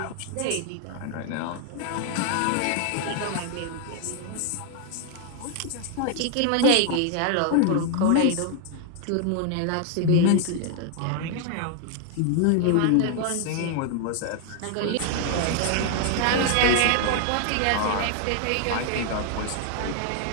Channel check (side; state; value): both; different; correlation 0.00